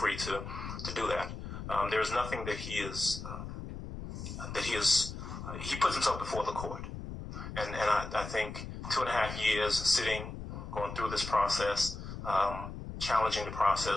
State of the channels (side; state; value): left; noise; rumble, 8 dB below the sound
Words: to do that. There is nothing that he puts himself before the court. And I think 2.5 years sitting, going through this process, challenging the